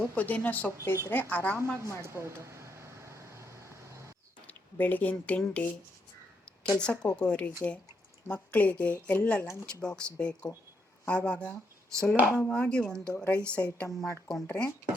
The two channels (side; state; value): both; normal; correlation 0.78